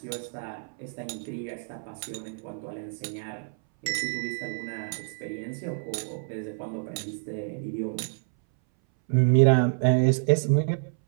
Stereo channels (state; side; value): silent; left; 59 dB below the other